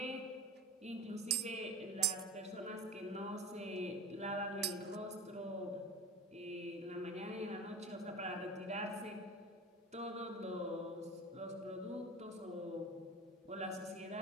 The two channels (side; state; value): both; normal; correlation 0.32